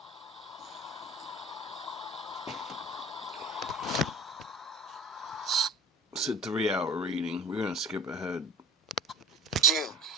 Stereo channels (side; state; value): both; normal; correlation 0.38